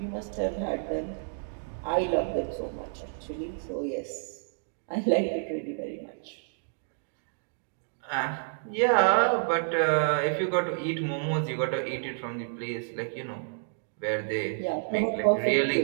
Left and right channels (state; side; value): silent; left; digital silence